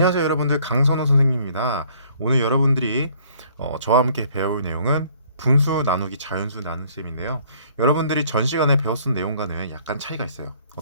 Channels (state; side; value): inverted; both; correlation -0.59